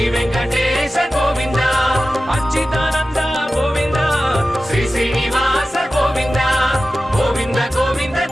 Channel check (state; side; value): normal; both; correlation 0.94